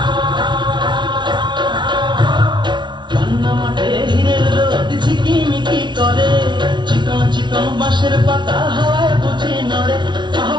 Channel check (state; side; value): late; left; 0.22 ms